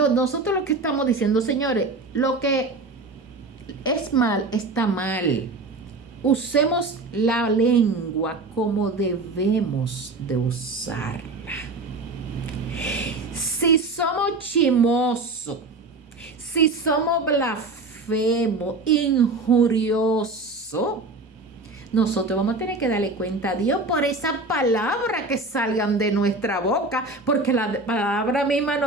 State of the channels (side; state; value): left; quieter; 3.3 dB